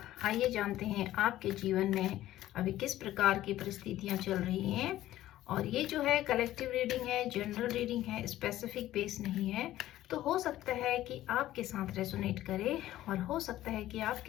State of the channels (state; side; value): quieter; right; 14.3 dB